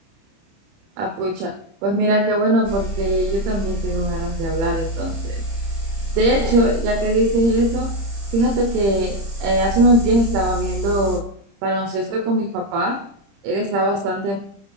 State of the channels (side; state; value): left; late; 30 ms